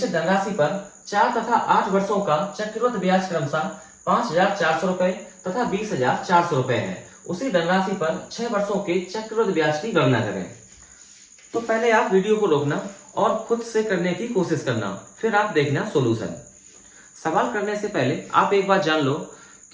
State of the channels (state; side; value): identical; both; correlation 1.00